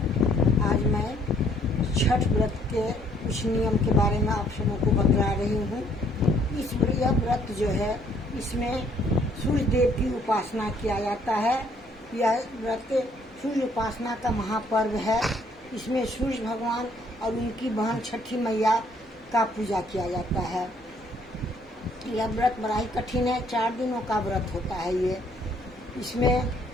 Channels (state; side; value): normal; both; correlation 0.65